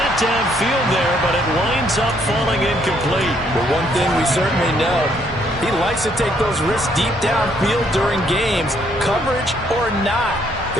downfield there, but it winds up falling incomplete. But one thing we certainly know, he likes to take those risks deep downfield during games, coverage or not.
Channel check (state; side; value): normal; both; correlation 0.69